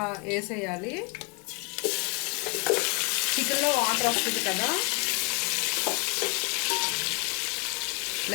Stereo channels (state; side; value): quieter; right; 31.9 dB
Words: వేసేయాలి. చికెన్లో వాటర్ వస్తుంది కదా,